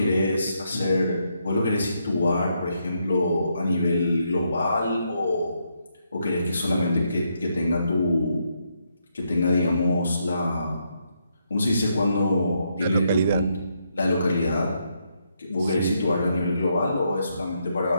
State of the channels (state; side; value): inverted; both; correlation -0.78